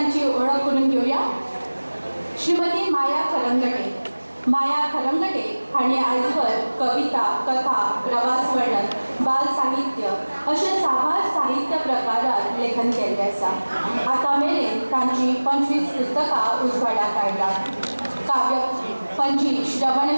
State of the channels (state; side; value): inverted; both; correlation -1.00